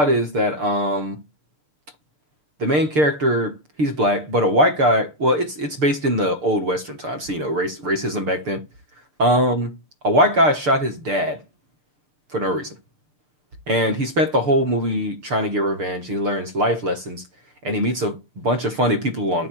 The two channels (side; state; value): left; late; 6.7 ms